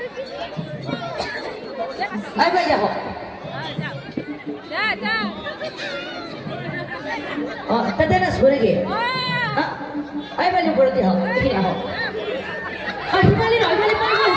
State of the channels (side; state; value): both; identical; correlation 1.00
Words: বাইদেউ আহক তাতে নাচব নেকি বাইদেউ ওপৰতে হওক এইখিনি আহক সিফালে নহয়